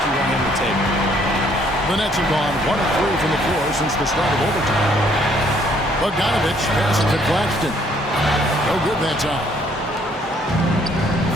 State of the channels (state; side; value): normal; both; correlation 0.64